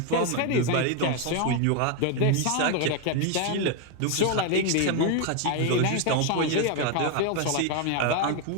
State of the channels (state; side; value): different; both; correlation 0.01